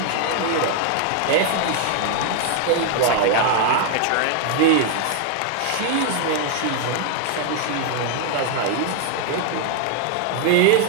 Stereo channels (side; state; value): both; different; correlation 0.00